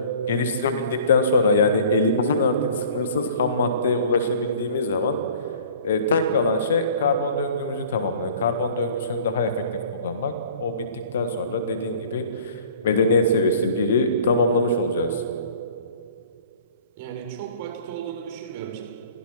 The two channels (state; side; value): inverted; both; correlation -0.48